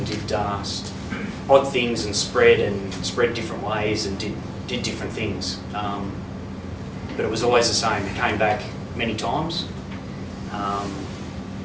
did odd things and spread different ways and did different things. But it was always the same. It came back many times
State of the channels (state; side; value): identical; both; correlation 1.00